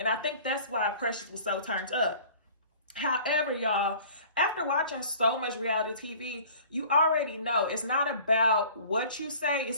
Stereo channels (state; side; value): inverted; both; correlation -0.47